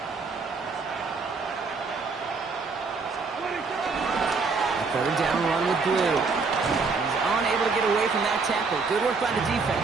3rd down run with Blue. He's unable to get away from that tackle. Good work by the defense.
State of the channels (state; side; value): quieter; left; 4.5 dB